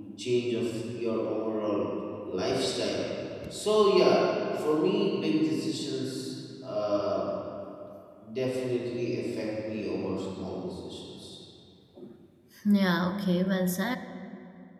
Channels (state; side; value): identical; both; correlation 1.00